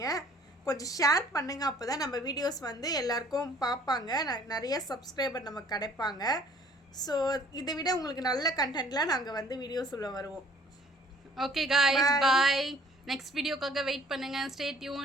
கொஞ்சம் ஷேர் பண்ணுங்கள், அப்போ தான் நம்ம வீடியோஸ் வந்து எல்லாருக்கும் பார்ப்பாங்க, நிறைய சப்ஸ்கிரைபர் நமக்கு கிடைப்பாங்க. ஸோ இதை விட உங்களுக்கு நல்ல கண்டென்ட்லாம் நாங்கள் வந்து வீடியோஸ் உள்ள வருவோம். Okay guys, bye. நெக்ஸ்ட் வீடியோக்காக வெயிட் பண்ணுங்கள். Stay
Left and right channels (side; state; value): both; normal; correlation 0.55